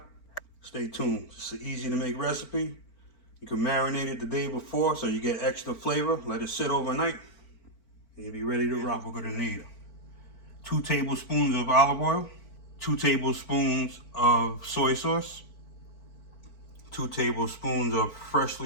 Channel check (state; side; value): late; right; 4.4 ms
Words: Stay tuned. It's an easy to make recipe. You can marinate it the day before so you get extra flavor. Let it sit overnight and you'll be ready to rock. We're going to need 2 tablespoons of olive oil, 2 tablespoons of soy sauce, 2 tablespoons of